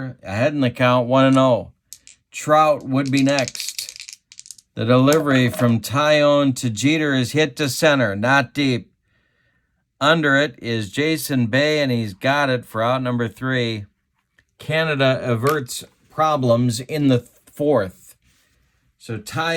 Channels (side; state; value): both; identical; correlation 1.00